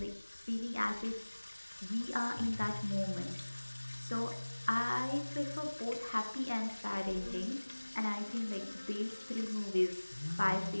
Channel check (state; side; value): inverted; both; correlation -1.00